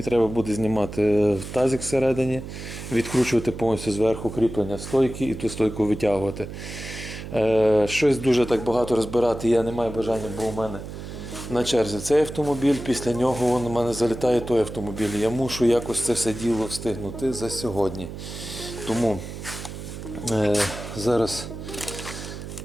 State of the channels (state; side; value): noise; right; hum, 10 dB below the sound